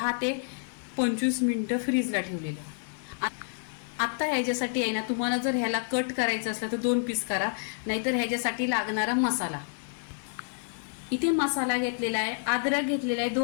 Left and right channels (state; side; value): silent; right; digital silence